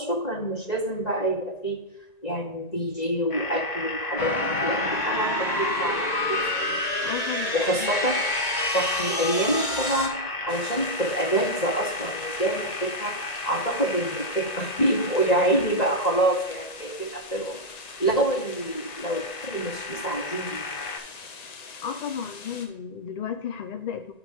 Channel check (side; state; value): right; late; 1.9 ms